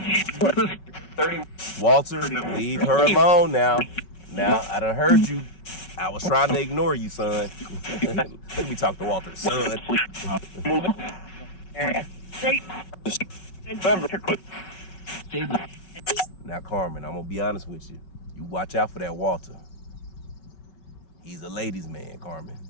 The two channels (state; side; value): late; right; 5.3 ms